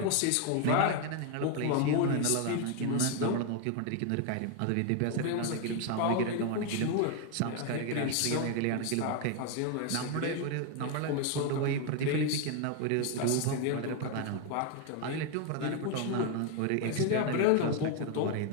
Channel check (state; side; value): different; both; correlation 0.01